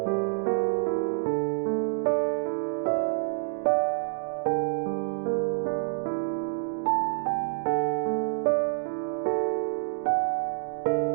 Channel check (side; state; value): left; silent; 60 dB below the other